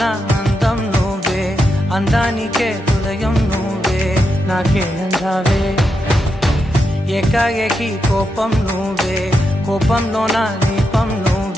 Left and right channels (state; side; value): normal; both; correlation 0.85